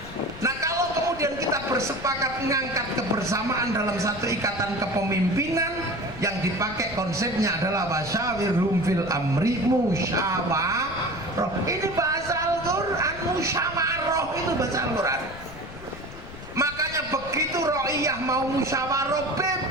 Nah, kalau kemudian kita bersepakat mengangkat kebersamaan dalam satu ikatan kepemimpinan, yang dipakai konsepnya adalah wasyawirhum fil amri, musyawarah. Ini bahasa Al-Quran, musyawarah itu bahasa Al-Quran. Makanya begitu Ro'iyah mau musyawarah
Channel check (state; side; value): noise; left; rumble, 15 dB below the sound